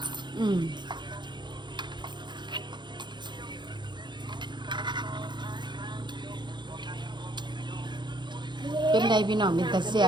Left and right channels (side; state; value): left; late; 0.22 ms